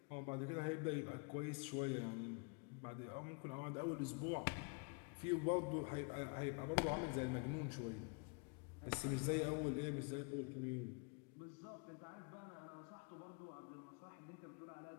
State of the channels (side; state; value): right; quieter; 35.0 dB